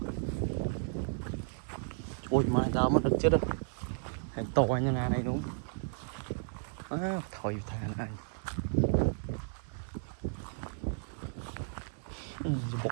ôi mai tao mất được chết rồi hành to như này đúng thôi thà này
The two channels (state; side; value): silent; left; 55 dB below the other